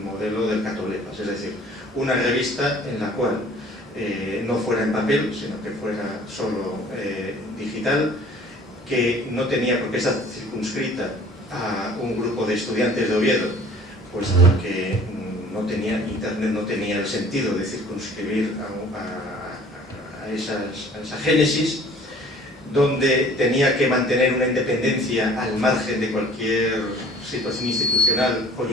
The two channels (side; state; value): both; normal; correlation 0.51